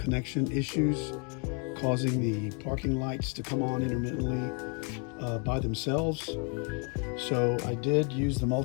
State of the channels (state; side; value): quieter; right; 37.0 dB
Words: issues causing the parking lights to come on intermittently by themselves. So I did use the